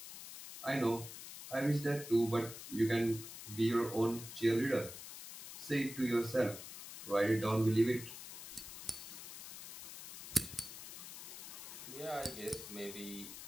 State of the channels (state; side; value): noise; left; hiss, 11 dB below the sound